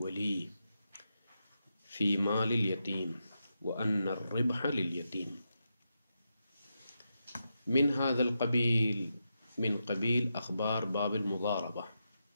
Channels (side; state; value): both; inverted; correlation -0.86